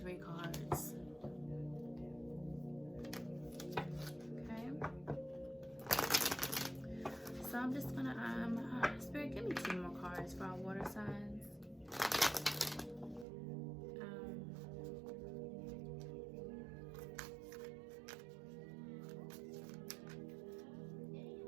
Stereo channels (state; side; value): drops out; left; at 13.2 s